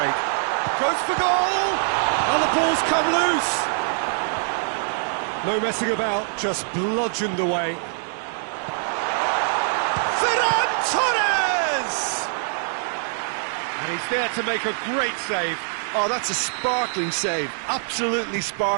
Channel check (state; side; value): silent; left; digital silence